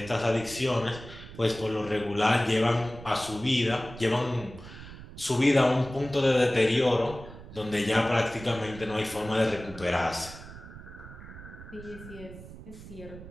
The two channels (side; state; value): right; noise; rumble, 15 dB below the sound